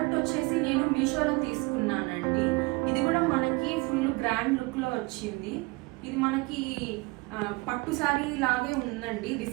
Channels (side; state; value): left; quieter; 25.5 dB